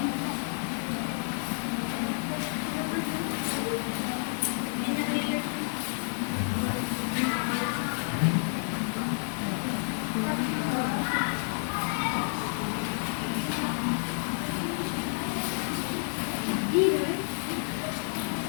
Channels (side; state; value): right; silent; 58 dB below the other